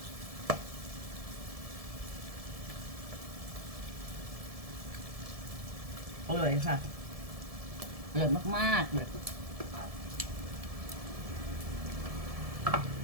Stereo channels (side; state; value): left; late; 1.7 ms